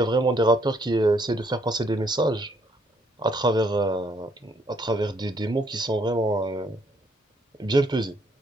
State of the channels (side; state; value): both; normal; correlation 0.69